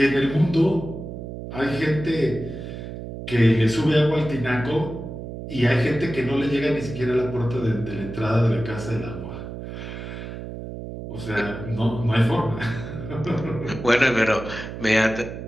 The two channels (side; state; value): right; noise; hum, 9 dB below the sound